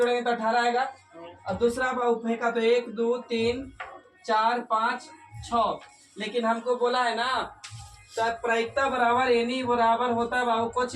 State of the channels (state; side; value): identical; both; correlation 1.00